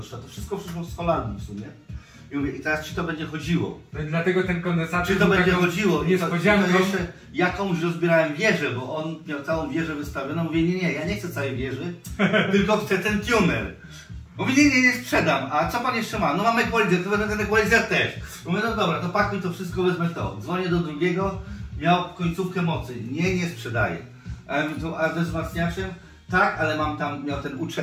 To wszystko przyszło z Holandii w sumie. I mówię, i teraz czy to będzie chodziło? No dlatego ten kondensator. Czy to będzie chodziło? Niespodzianką. Jeszcze jakąś rozbierałem wieżę, bo on miał całą wieżę wystawioną. Mówię, nie, ja nie chcę całej wieży, tylko chcę ten tuner. Mówię, nie sprzedam. A co pan jeszcze ma? No mam equalizer, to wezmę ten equalizer też. Mówię, no dobra, to pakuj to wszystko, wezmę to. Dzwonię do drugiego, miał końcówkę mocy. Nie sprzedaję. A ze wzmacniaczem? Tak, ale mam tam, miał ten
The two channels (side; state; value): both; identical; correlation 1.00